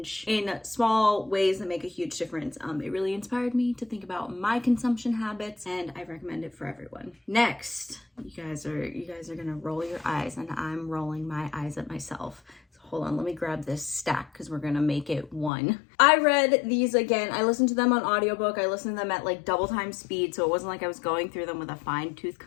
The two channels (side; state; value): right; drops out; at 15.5 s